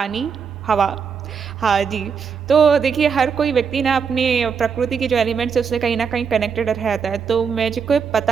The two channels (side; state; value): left; quieter; 6.3 dB